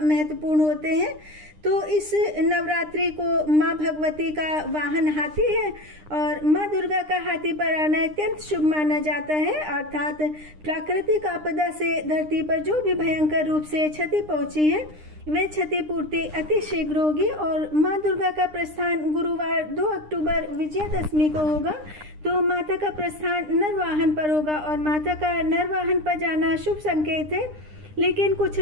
महत्वपूर्ण होते हैं। तो इस नवरात्रि को माँ भगवती का वाहन हाथी है और माँ दुर्गा का हाथी पर आना अत्यंत शुभ माना जाता है। अर्थात प्राकृतिक आपदा से धरती पर जो भी भयंकर रूप से क्षति पहुंची है वे क्षतिपूर्ति अति शीघ्र होगी। और माँ दुर्गा का प्रस्थान गुरुवार 2 अक्टूबर विजयादशमी को होगा। तो माता का प्रस्थान नरवाहन पर होगा और माता का नरवाहन पर जाना शुभ संकेत है। लेकिन कुछ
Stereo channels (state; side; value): late; left; 9.8 ms